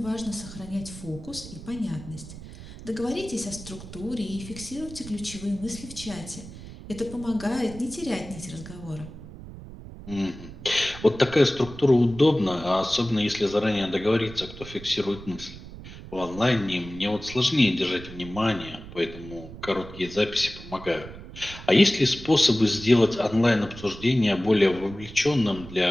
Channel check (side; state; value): right; noise; rumble, 14 dB below the sound